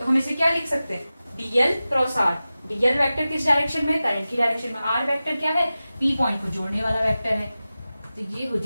हम इसे क्या लिख सकते हैं, DL cross R. DL vector किस डायरेक्शन में, करंट की डायरेक्शन में, आर वेक्टर क्या है, पी पॉइंट को जोड़ने वाला वेक्टर है, तो ये हो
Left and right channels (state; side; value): inverted; both; correlation -0.95